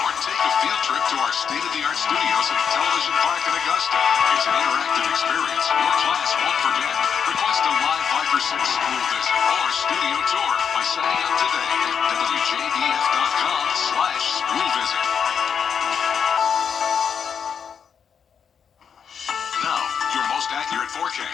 Or take a field trip to our state-of-the-art studios at Television Park in Augusta. It's an interactive experience your class won't forget. Request a live Viper 6 school visit or studio tour by signing up today at WJBF.com/school visit.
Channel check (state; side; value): quieter; right; 7.2 dB